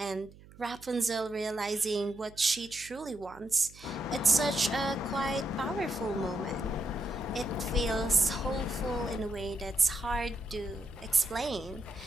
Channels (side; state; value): right; noise; hum, 21 dB below the sound